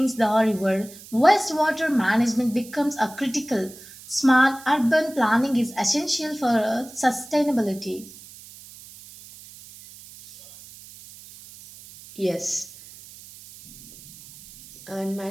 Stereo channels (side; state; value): right; noise; hiss, 19 dB below the sound